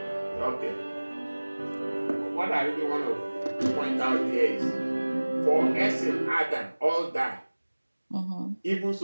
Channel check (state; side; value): inverted; both; correlation -1.00